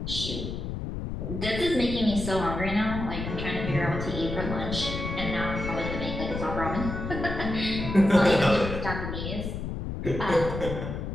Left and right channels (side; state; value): left; noise; rumble, 5 dB below the sound